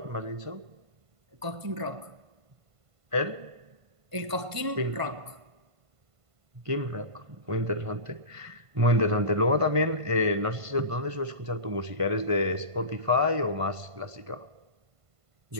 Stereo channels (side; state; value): left; late; 1.5 ms